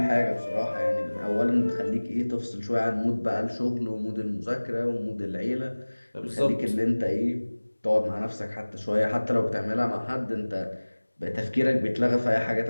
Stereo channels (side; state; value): both; inverted; correlation -1.00